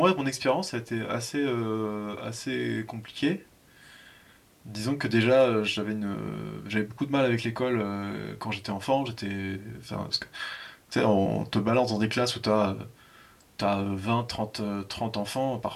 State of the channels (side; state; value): both; identical; correlation 1.00